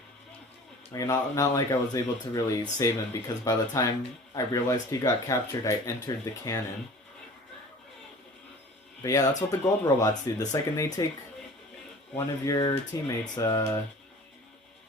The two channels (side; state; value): both; normal; correlation 0.43